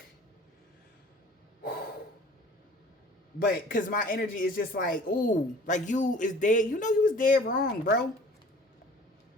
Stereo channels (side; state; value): both; normal; correlation 0.48